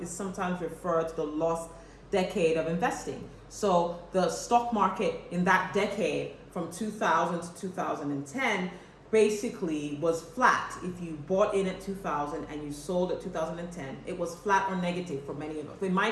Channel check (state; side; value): identical; both; correlation 1.00